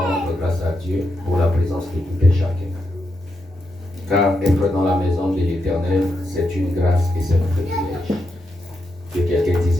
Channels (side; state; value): both; normal; correlation 0.84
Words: rendre grâce à Dieu pour la présence de tout et chacun. Car être dans la maison de l'Éternel, c'est une grâce et c'est un privilège. Que quelqu'un